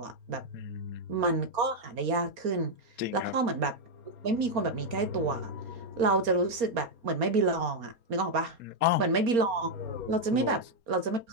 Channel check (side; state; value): left; late; 4.3 ms